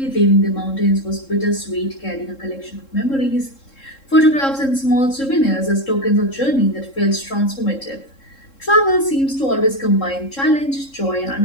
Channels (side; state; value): right; late; 3.7 ms